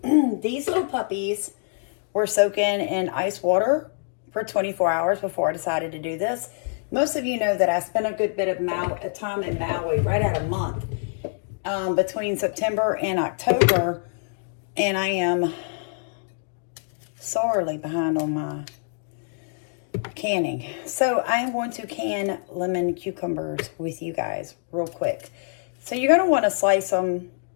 These little puppies were soaking in ice water for 24 hours before I decided to do this. Most of you know that I spent a good bit of time in Maui, right at a month, between September and October, and I am sorely behind on my canning. So I am going to can lemon cucumbers with you guys real quick. So you're going to want to slice them,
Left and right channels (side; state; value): right; silent; digital silence